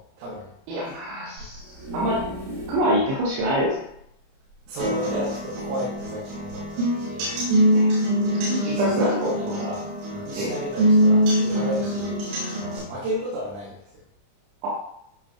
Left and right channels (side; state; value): left; late; 30 ms